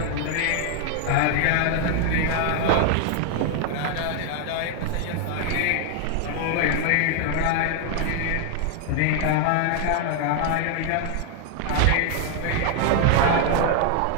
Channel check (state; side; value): different; both; correlation 0.00